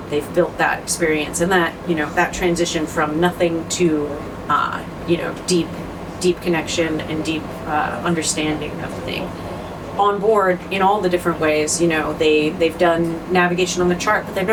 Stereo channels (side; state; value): both; identical; correlation 1.00